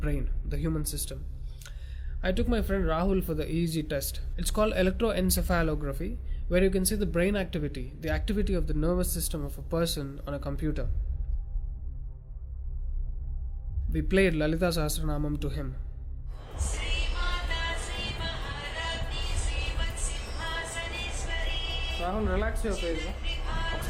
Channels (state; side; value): identical; both; correlation 1.00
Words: the human system. I took my friend Rahul for the EEG test. It's called electroencephalography, where you can see the brain activity, the activity of the nervous system of a person on a computer. We played Lalita Sahasranamam to him. Rahul, relax your face.